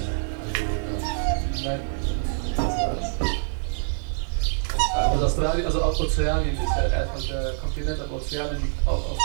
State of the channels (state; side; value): silent; left; digital silence